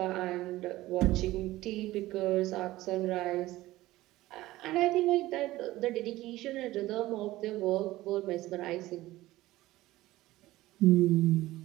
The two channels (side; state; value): left; quieter; 17.1 dB